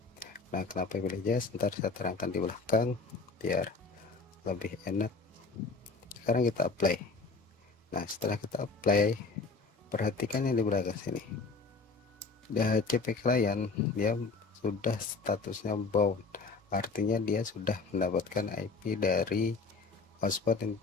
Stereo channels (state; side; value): quieter; right; 4.2 dB